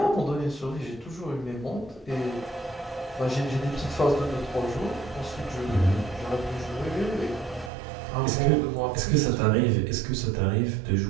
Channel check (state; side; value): drops out; left; at 7.7 s